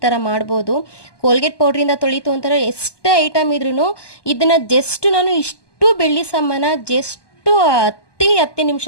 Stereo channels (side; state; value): right; late; 1.2 ms